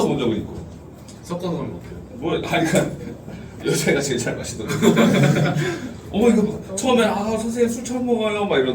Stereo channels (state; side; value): identical; both; correlation 1.00